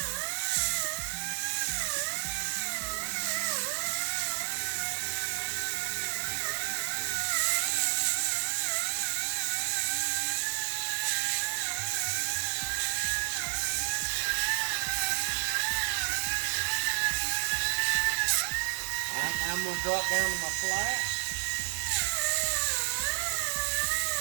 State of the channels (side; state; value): left; silent; 57 dB below the other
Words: I'm going to drop down to my flat.